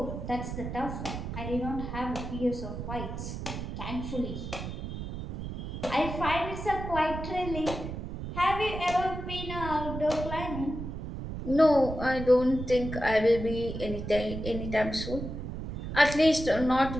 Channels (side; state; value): right; noise; rumble, 7 dB below the sound